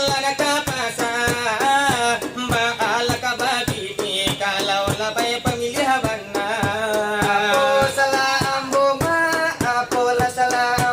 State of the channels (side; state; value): both; identical; correlation 1.00